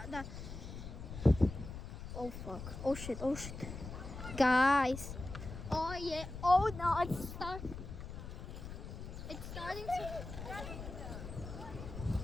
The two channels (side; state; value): left; noise; rumble, 9 dB below the sound